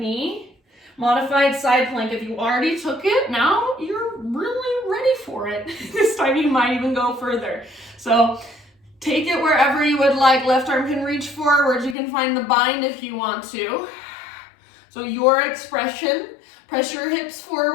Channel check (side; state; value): right; drops out; at 12.0 s